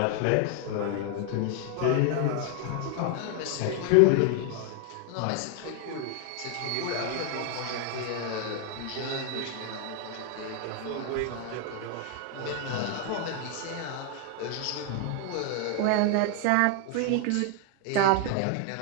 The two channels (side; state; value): both; different; correlation 0.00